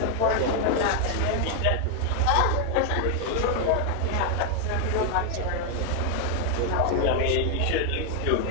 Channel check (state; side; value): different; both; correlation 0.00